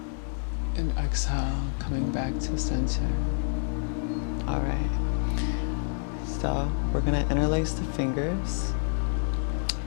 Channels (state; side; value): silent; right; 57 dB below the other